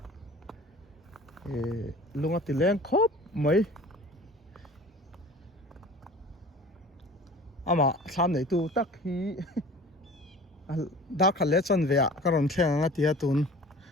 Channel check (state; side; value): normal; both; correlation 0.44